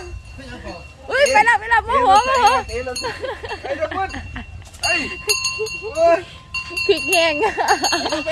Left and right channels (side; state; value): both; identical; correlation 1.00